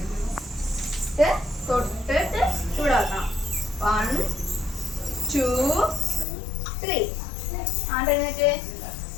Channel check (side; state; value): right; drops out; at 6.2 s